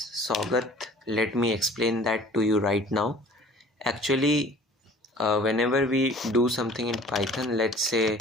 Sagat, let me explain that to you right now. Actually, whenever we do something in Python, let's say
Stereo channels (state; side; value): normal; both; correlation 0.49